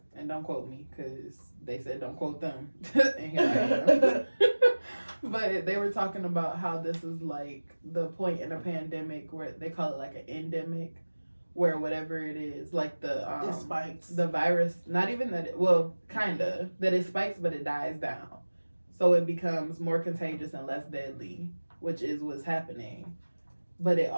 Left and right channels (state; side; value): inverted; both; correlation -1.00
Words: and don't quote me because they said don't quote them, and here I am. But they were talking about how this is like the point in a pandemic where they call it like an endemic, where whatever it is, like it spikes. The virus, not even that that it spikes, but it dies down. So it becomes more contagious and less deadly, which is what's happening. But it